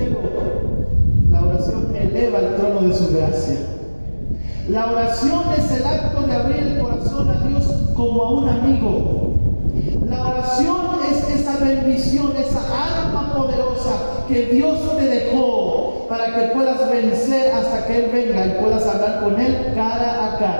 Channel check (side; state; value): both; inverted; correlation -1.00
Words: la oración eleva al trono de su gracia. La oración es el acto de abrir el corazón a Dios como a un amigo. La oración es esa bendición, esa arma poderosa que Dios te dejó para que puedas vencer hasta que Él venga y puedas hablar con Él cara a